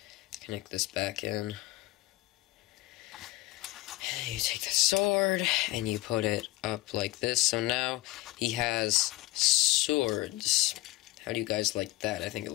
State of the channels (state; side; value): quieter; right; 18.5 dB